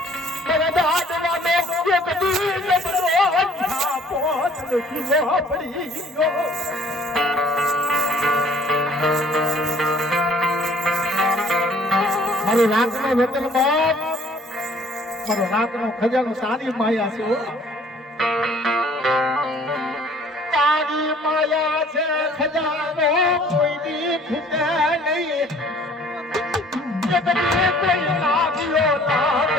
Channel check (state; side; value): normal; both; correlation 0.56